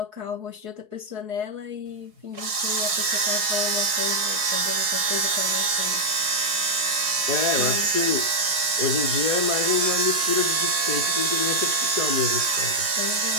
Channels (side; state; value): left; late; 4.7 ms